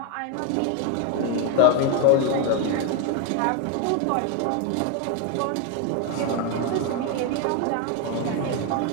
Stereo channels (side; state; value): both; different; correlation 0.01